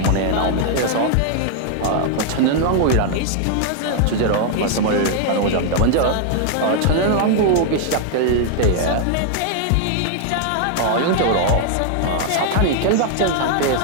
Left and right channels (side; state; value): both; different; correlation 0.00